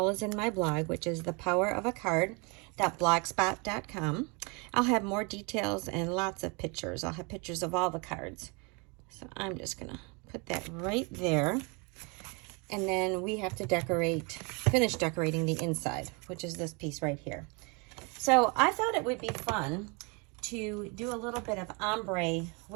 as in my blog, which is thepowerofacard.blogspot.com. I'll have more details and lots of pictures. I'll have pictures of all the cards. So I'm just going to put that right there. And then we have to finish decorating the inside, which is this piece right here. So I thought it would be fun to do a little bit of ombre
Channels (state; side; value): quieter; left; 31.3 dB